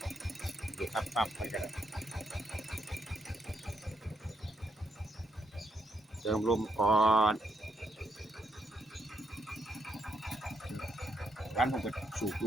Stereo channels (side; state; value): both; normal; correlation 0.77